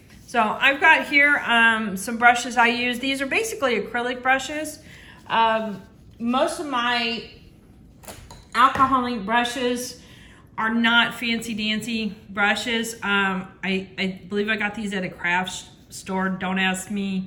So I've got here some brushes I use. These are basically acrylic brushes. Most of my alcohol ink brushes are not fancy dancy brushes. I believe I got these at a craft store. Don't ask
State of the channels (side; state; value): both; identical; correlation 1.00